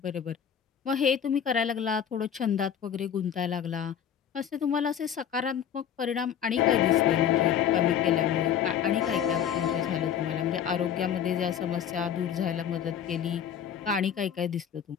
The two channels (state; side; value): quieter; right; 8.9 dB